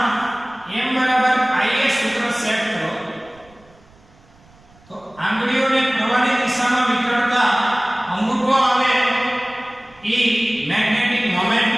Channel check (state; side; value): noise; right; rumble, 29 dB below the sound